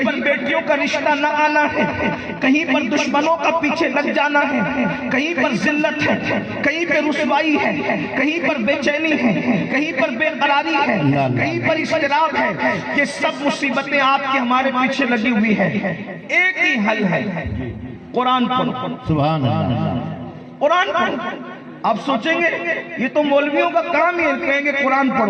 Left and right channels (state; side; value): identical; both; correlation 1.00